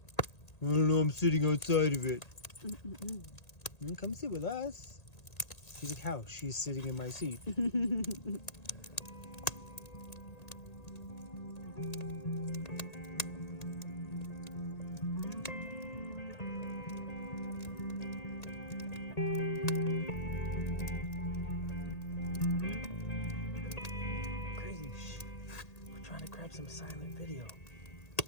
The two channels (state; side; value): late; right; 1.8 ms